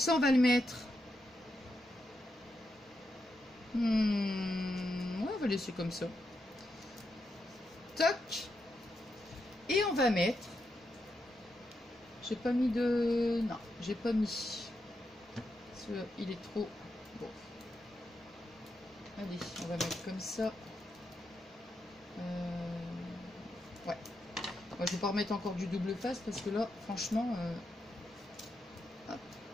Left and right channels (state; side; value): normal; both; correlation 0.84